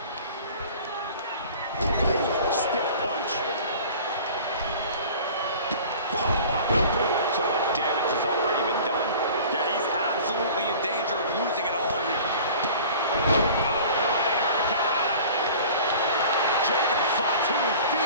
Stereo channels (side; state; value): both; inverted; correlation -0.43